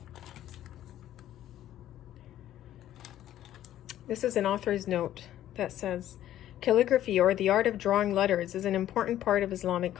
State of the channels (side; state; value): right; quieter; 12.5 dB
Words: This is an author's note that says, calligraphy, or the art of drawing letters, is an important part of Islamic